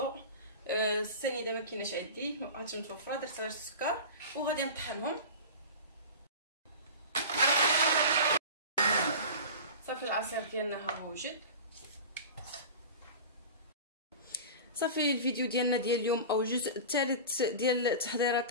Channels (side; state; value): both; inverted; correlation -0.32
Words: السنيده ما كايناش عندي، ما بقاتش متوفره، درت غير السكر. وغادي نطحنهم. صافي العصير ديالنا ها هو وجد. صافي الفيديو ديالنا ديال اليوم او الجزء الثالث ديال